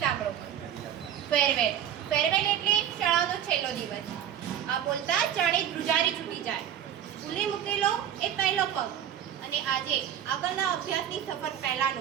સાંભળો. ફેરવેલ એટલે શાળાનો છેલ્લો દિવસ. આ બોલતા જાણે ધ્રુજારી છૂટી જાય. સ્કૂલે મૂકેલો એ પહેલો પગ અને આજે આગળના અભ્યાસની સફર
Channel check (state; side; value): quieter; left; 10.0 dB